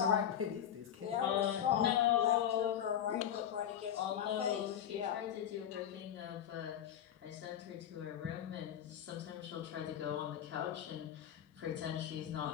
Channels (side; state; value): right; quieter; 10.0 dB